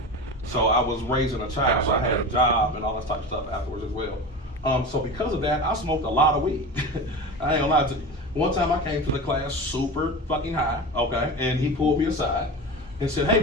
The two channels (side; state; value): both; normal; correlation 0.29